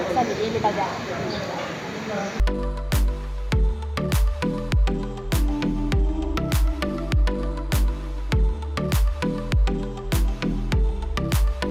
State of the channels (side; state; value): both; identical; correlation 1.00